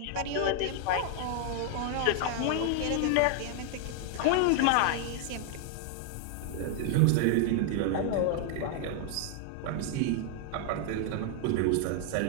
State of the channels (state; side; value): different; both; correlation 0.00